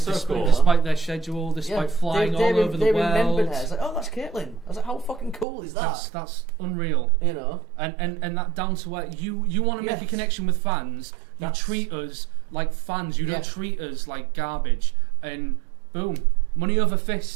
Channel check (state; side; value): drops out; left; at 5.5 s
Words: so despite, cool. despite their schedule, despite flying all over the they world. remembered her. It's like, oh, that's Caitlin. I was like, how fucking cool is that? That's unreal. You know. And that down to where you want to make a connection with fans. You treat us like fans. You don't treat us like garbage. And boom, money over